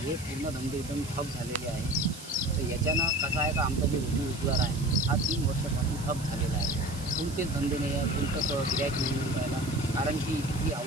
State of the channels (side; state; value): right; noise; hiss, 14 dB below the sound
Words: पूर्ण धंदे एकदम ठप झालेले आहे। तर याच्यानं कसं आहे का आमचा जे रोजगार आहे हा 3 वर्षापासून ठप झालेला आहे. कोणतेच धंदे नाही आहे, कोणतंच गिऱ्हाईक नाही मिळून राहिला, कारण की इथली